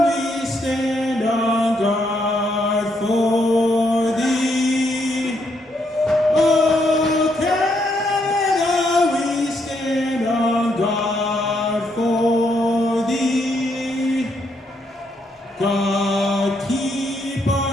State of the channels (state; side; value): normal; both; correlation 0.76